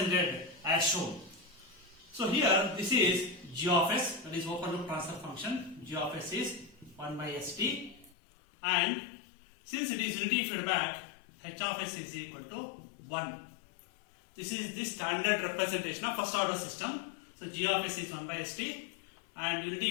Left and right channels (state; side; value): drops out; right; at 8.1 s